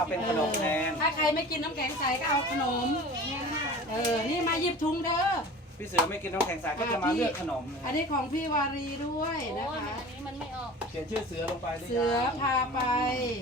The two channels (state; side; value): normal; both; correlation 0.39